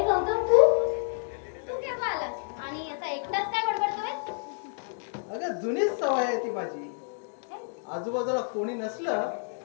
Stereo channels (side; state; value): right; silent; 59 dB below the other